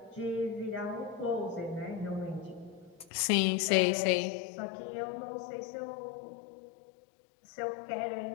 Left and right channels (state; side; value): drops out; right; at 3.1 s